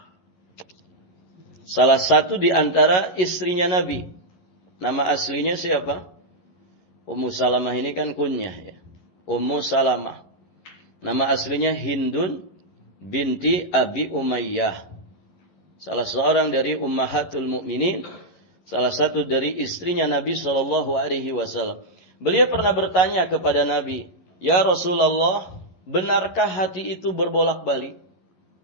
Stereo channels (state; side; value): late; right; 11 ms